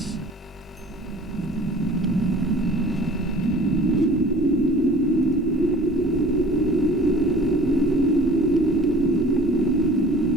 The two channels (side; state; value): both; normal; correlation 0.46